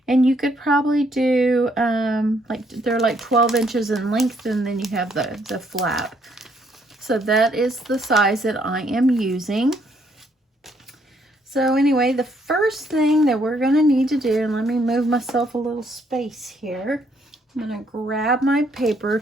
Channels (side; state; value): both; normal; correlation 0.70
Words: and you could probably do they're like 12 inches in length, and then you have the flap. So that is the size that I am using. So anyway, the first thing that we're going to need to do, and let me move myself a little space here. I'm going to grab my paper